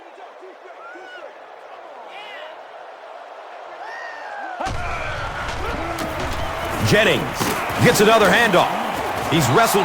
Jennings gets another handoff. He's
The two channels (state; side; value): identical; both; correlation 1.00